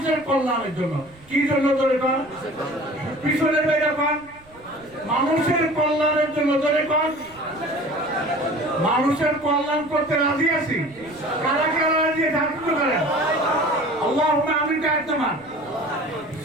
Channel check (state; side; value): noise; right; rumble, 26 dB below the sound